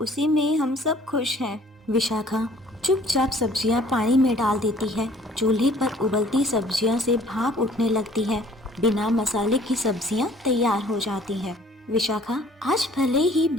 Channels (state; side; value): normal; both; correlation 0.55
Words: में हम सब खुश हैं। विशाखा चुपचाप सब्जियां पानी में डाल देती है। चूल्हे पर उबलती सब्जियां से भाप उठने लगती है। बिना मसाले की सब्जियां तैयार हो जाती हैं। विशाखा, आज भले ही